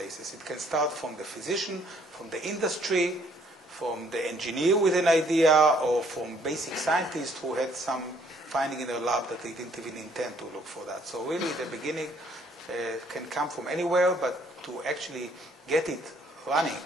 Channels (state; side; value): normal; both; correlation 0.64